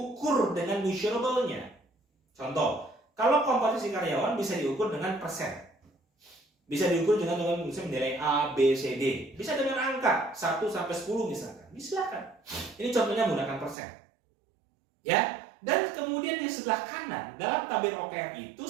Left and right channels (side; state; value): left; drops out; at 13.8 s